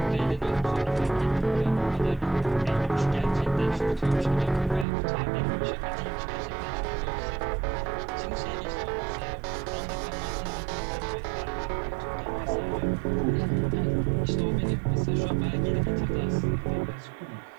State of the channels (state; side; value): drops out; left; at 4.9 s